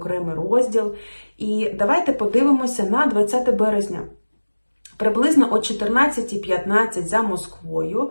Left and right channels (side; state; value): both; inverted; correlation -1.00